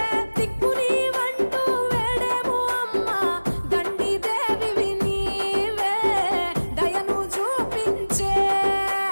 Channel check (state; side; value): inverted; both; correlation -1.00